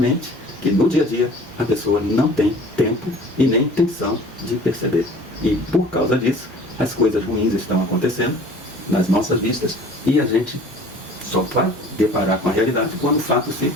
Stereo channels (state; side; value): normal; both; correlation 0.47